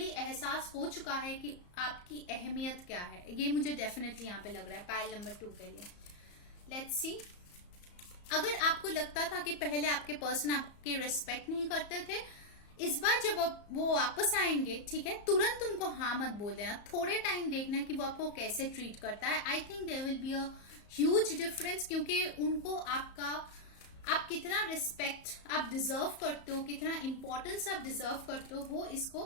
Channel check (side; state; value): right; late; 34 ms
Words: एहसास हो चुका है कि आपकी अहमियत क्या है। ये मुझे डेफिनेटली यहाँ पे लग रहा है पाइल नंबर 2 के लिए। लेट्स सी, अगर आपको लगता था कि पहले आपके पर्सन आपके रिस्पेक्ट नहीं करते थे, इस बार जब वो वापस आएंगे, ठीक है, तुरंत उनको हाँ मत बोल देना, थोड़े टाइम देखना कि वो आपको कैसे ट्रीट करता है। I think there will be a huge difference, क्योंकि उनको आप कितना रिस्पेक्ट आप डिजर्व करते हो, कितना इंपॉर्टेंस आप डिजर्व करते हो, वो